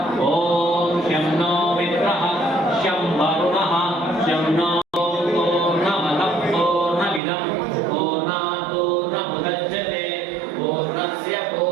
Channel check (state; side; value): drops out; left; at 7.2 s